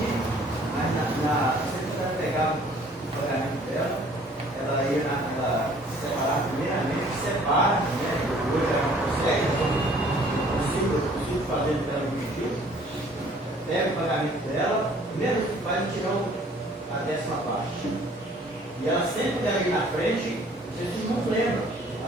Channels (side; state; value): both; normal; correlation 0.56